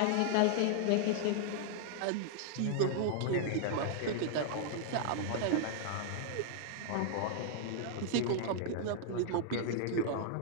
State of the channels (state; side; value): different; both; correlation -0.01